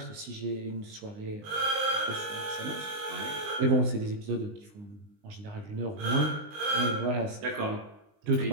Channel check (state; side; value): late; left; 19 ms